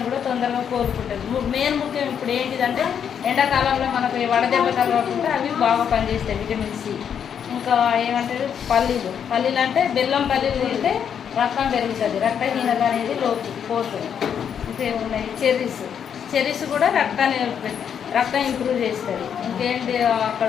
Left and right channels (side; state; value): right; quieter; 8.1 dB